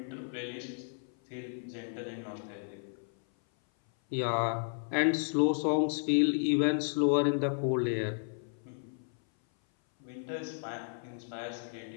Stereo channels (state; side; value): silent; right; 56 dB below the other